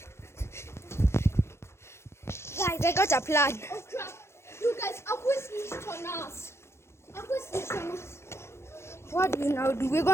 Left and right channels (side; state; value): right; late; 0.13 ms